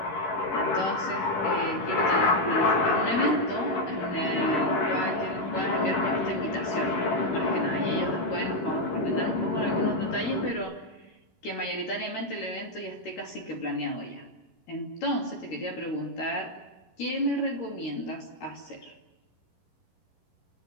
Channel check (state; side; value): late; right; 11 ms